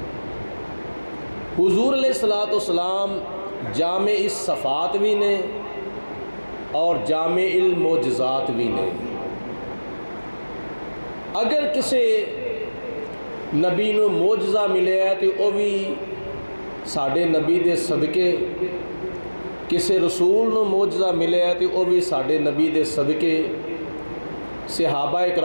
حضور علیہ الصلوۃ والسلام جامع الصفات بھی نے اور جامع المعجزات بھی نے۔ اگر کسی نبی نو معجزہ ملے ہے تو وہ بھی ساڈے نبی دے صدقے، کسی رسول نو معجزہ ملے ہے تو وہ بھی ساڈے نبی دے صدقے، صحابہ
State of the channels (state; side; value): inverted; both; correlation -1.00